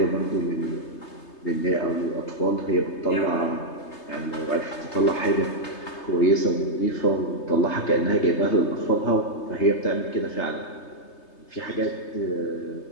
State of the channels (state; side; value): late; right; 3.3 ms